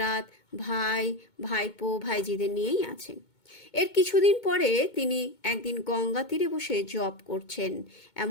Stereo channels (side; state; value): right; late; 2.2 ms